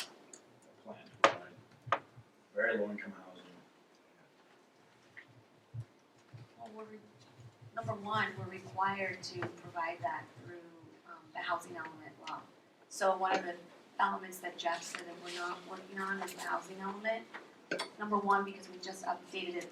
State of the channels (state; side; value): identical; both; correlation 1.00